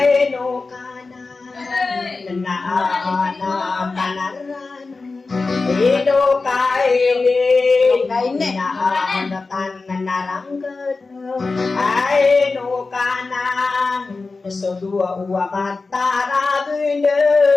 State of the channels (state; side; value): quieter; right; 3.9 dB